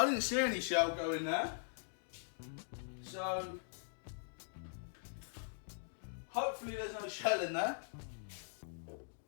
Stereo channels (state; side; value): silent; right; digital silence